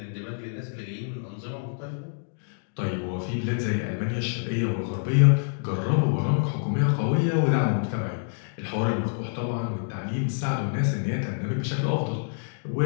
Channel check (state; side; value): silent; right; digital silence